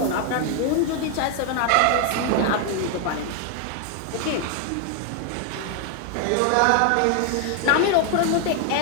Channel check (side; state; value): both; different; correlation 0.00